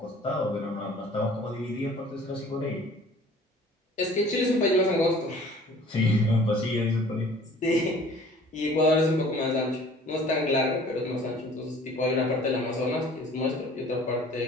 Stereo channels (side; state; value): both; normal; correlation 0.50